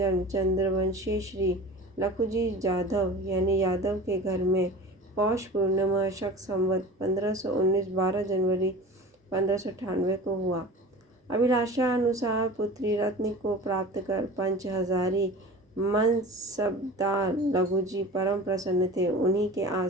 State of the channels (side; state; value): both; normal; correlation 0.37